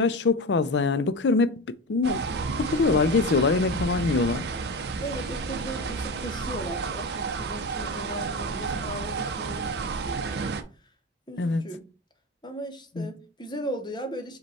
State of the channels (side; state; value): both; normal; correlation 0.25